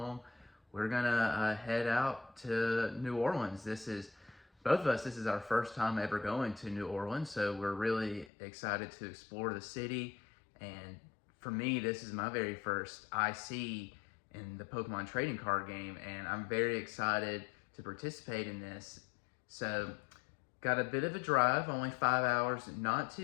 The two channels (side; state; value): right; drops out; at 8.3 s